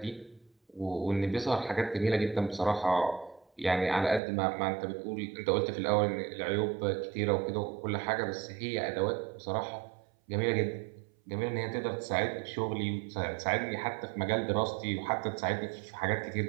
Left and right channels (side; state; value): left; drops out; at 4.2 s